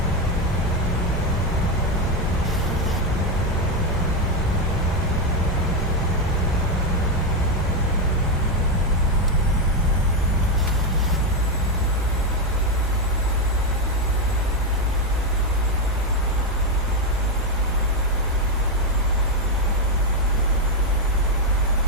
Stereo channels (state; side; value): normal; both; correlation 0.06